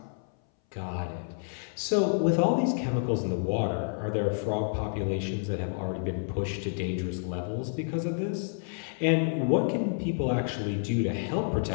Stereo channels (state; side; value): silent; right; 58 dB below the other